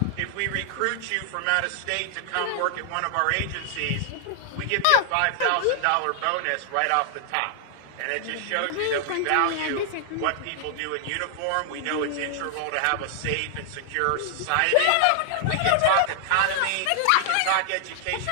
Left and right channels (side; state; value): both; different; correlation -0.01